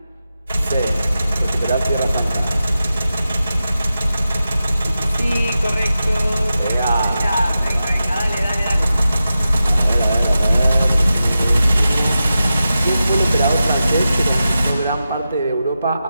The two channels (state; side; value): inverted; both; correlation -0.91